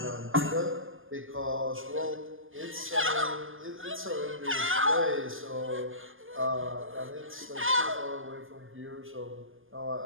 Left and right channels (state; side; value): late; left; 0.59 ms